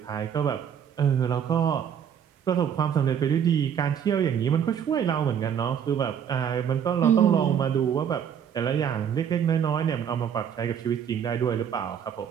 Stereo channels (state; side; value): quieter; left; 8.3 dB